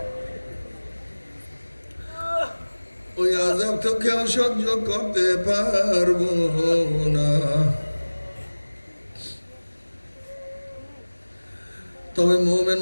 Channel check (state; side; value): inverted; both; correlation -1.00